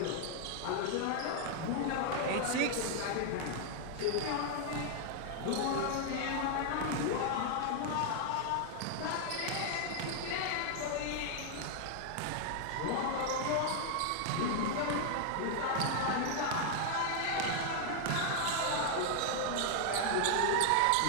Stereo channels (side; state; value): both; different; correlation 0.00